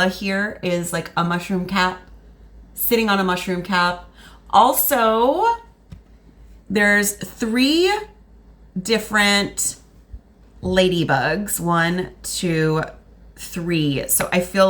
here is like a mushroom cap, sitting on a mushroom cap. Also, there's 3 different ladybugs, 1, 2, 3. So I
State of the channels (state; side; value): identical; both; correlation 1.00